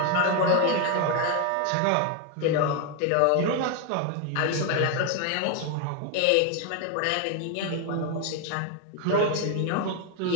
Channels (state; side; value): different; both; correlation 0.01